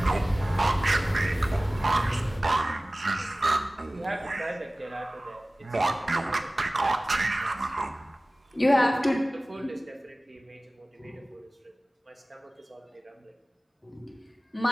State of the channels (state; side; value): normal; both; correlation 0.98